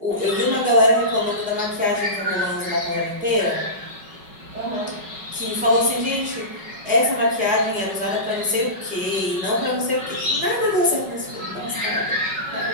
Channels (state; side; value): late; left; 5.3 ms